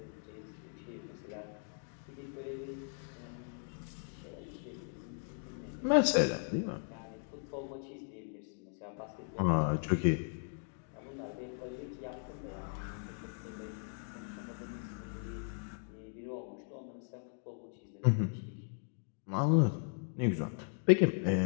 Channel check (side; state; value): right; silent; 53 dB below the other